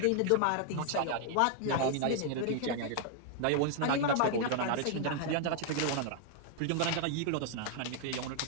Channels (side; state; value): both; different; correlation 0.00